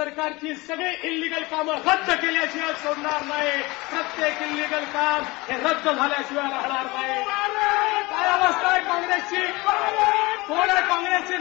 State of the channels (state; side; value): quieter; right; 22.9 dB